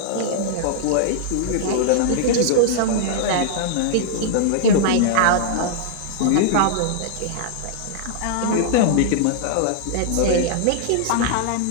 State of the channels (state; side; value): different; both; correlation -0.01